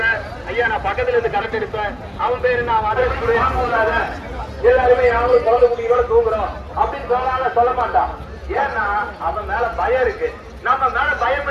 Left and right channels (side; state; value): both; identical; correlation 1.00